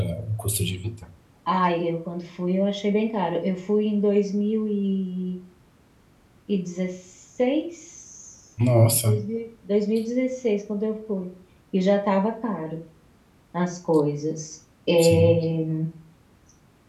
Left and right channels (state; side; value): identical; both; correlation 1.00